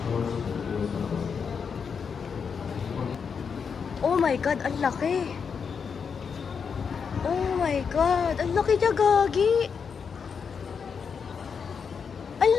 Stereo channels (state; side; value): quieter; right; 6.2 dB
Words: Oh my God, ang laki. Oh my God, ang laki niya, Gagi. Ang